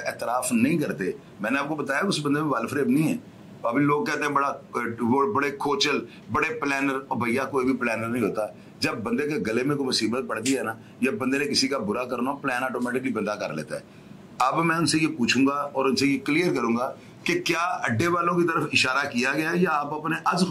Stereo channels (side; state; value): both; identical; correlation 1.00